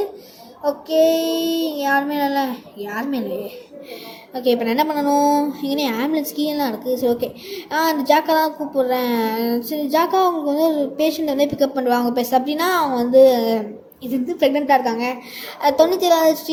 ஓகே, யாருமே இல்லையே. ஓகே, இப்போ நான் என்ன பண்ணணும். இங்கே ஆம்புலன்ஸ் கீழெலாம் இருக்குது. சரி, ஓகே, அந்த ஜாக்கா தான் கூப்பிட்றேன். சரி, ஜாக்கா அவங்களுக்கு வந்து ஒரு பேஷண்ட் வந்து பிக்கப் பண்ணுவாங்க. பேச அப்படின்னா அவங்க வந்து இது வந்து ப்ரெக்னெண்ட்டாக இருக்காங்க, 97வது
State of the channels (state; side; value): identical; both; correlation 1.00